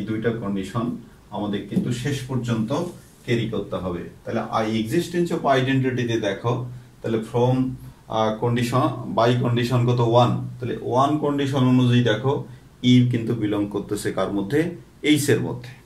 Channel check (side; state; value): both; identical; correlation 1.00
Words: দুইটা কন্ডিশন আমাদের কিন্তু শেষ পর্যন্ত ক্যারি করতে হবে। তাহলে এক্সিস্টেন্স অফ আইডেন্টিটিতে দেখো, তাহলে ফ্রম কন্ডিশন বাই কন্ডিশন কত 1, তাহলে 1 কন্ডিশন অনুযায়ী দেখো ই কিন্তু বিলং করতেছে কার মধ্যে, এইচ এর মধ্যে।